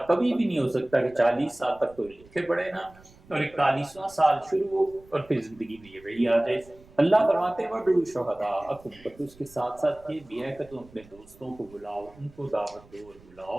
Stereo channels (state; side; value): noise; right; rumble, 25 dB below the sound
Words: کبھی بھی نہیں ہو سکتا کہ 40 سال تک تو لکھے پڑھے نا، اور 41واں سال شروع ہو اور پھر زندگی میں یہ وہی آ جائے۔ اللہ فرماتے وَادْعُوا شُهَدَاءَکُم، پر اس کے ساتھ ساتھ یہ بھی ہے کہ تم اپنے دوستوں کو بلاؤ، ان کو دعوت دو اور